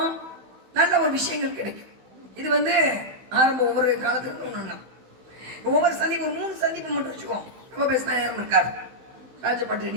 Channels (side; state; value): left; late; 15 ms